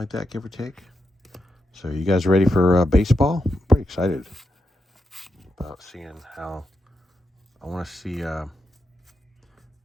like that, give or take. So you guys ready for baseball? I'm pretty excited about seeing how... I want to see,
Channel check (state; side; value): normal; both; correlation 0.85